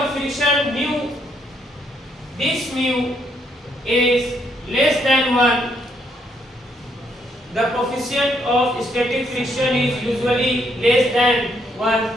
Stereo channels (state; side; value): normal; both; correlation 0.73